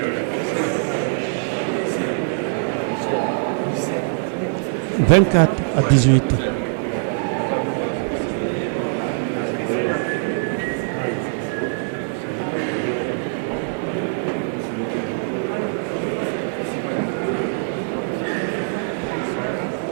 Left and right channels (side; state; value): left; silent; digital silence